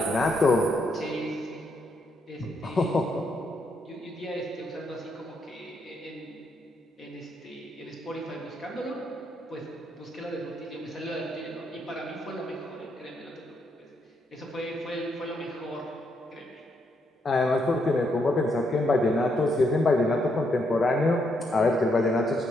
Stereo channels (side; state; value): both; normal; correlation 0.77